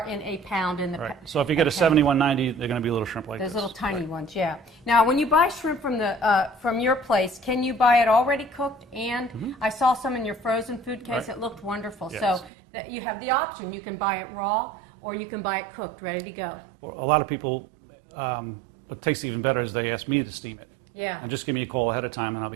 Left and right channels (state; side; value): drops out; left; at 12.5 s